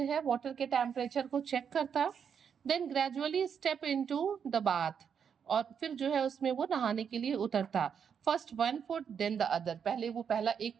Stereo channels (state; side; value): quieter; left; 7.3 dB